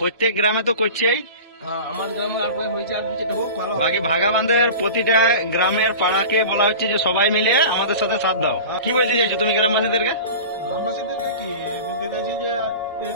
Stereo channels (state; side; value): inverted; both; correlation -0.34